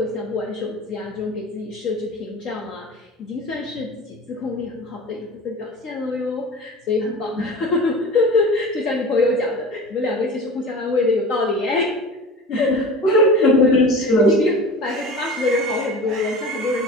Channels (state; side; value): normal; both; correlation 0.35